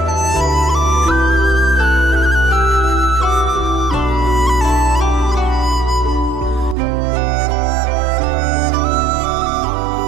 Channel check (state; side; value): drops out; left; at 6.8 s